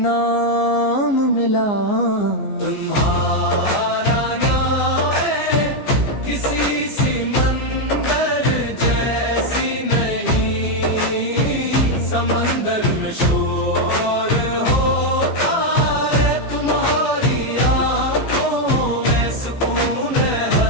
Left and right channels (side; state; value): right; late; 15 ms